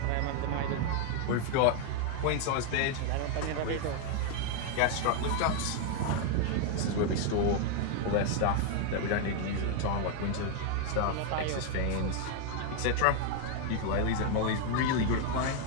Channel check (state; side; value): different; both; correlation 0.01